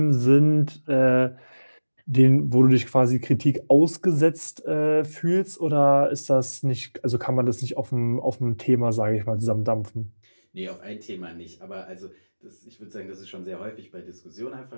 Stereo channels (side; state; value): both; inverted; correlation -1.00